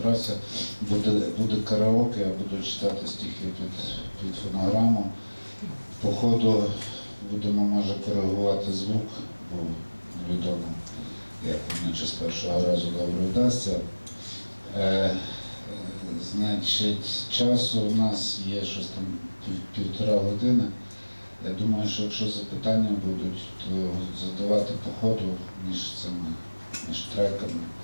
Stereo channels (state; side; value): inverted; both; correlation -1.00